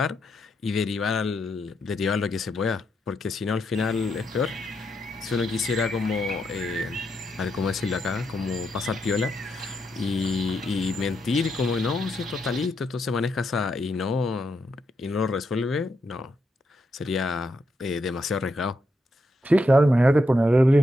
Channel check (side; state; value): both; normal; correlation 0.81